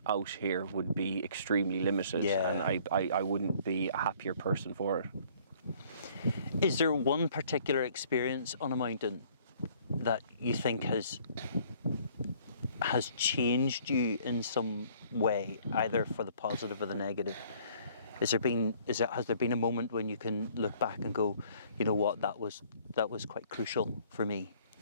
out here would be extremely limited, and I wouldn't be a happier person for it. Is there one particular experience on a mountain that you think has changed you in some way, either for the positive or the negative? Has there been a moment when you can look back and go, you know what, that was quite crucial for me?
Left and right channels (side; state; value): both; inverted; correlation -0.58